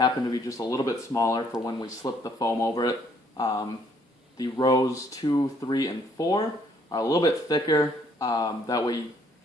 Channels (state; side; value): normal; both; correlation 0.65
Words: to be just a little bit smaller for when we slip the foam over it. The rows 2, 3, and 4 are a little bit thicker. That way,